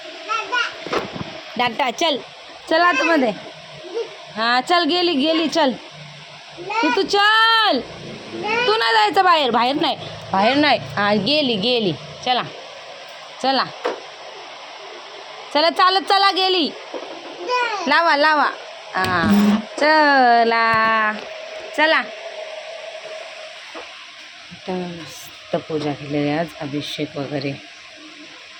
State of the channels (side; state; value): both; identical; correlation 1.00